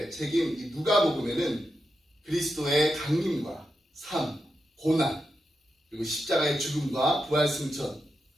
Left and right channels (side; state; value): both; normal; correlation 0.87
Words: 책임 이 누가복음에는 그리스도의 강림과 삶, 고난, 그리고 십자가의 죽음과 부활 승천,